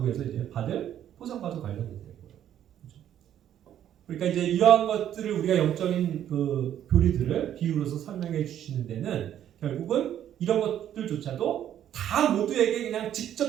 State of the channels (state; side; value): quieter; left; 10.7 dB